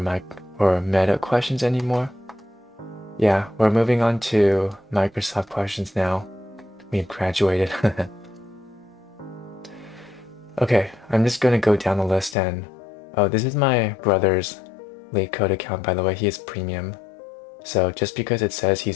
or Meta questions anymore? Yeah, we're moving on to Microsoft questions now. We've graduated. Okay, I'm just gonna go down the list and... Oh, this is my brother's Leetcode account, by the way. He is premium. So just because it says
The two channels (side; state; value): right; drops out; at 12.4 s